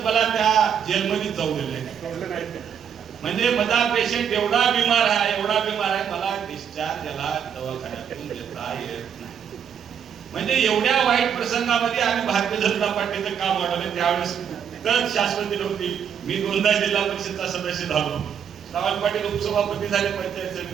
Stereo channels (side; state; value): left; quieter; 8.0 dB